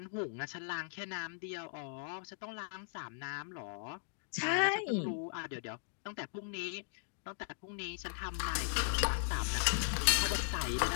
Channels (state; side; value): silent; right; digital silence